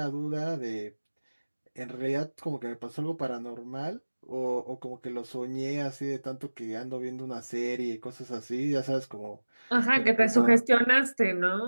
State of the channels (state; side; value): inverted; both; correlation -1.00